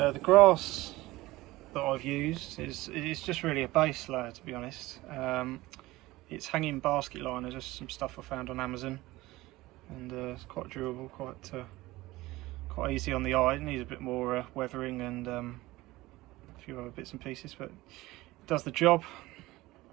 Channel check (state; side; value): quieter; left; 18.9 dB